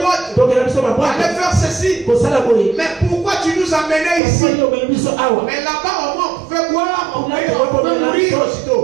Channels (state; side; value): drops out; left; at 4.2 s